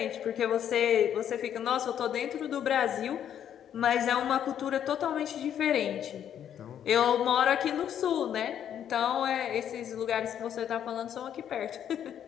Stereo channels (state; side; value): quieter; right; 9.6 dB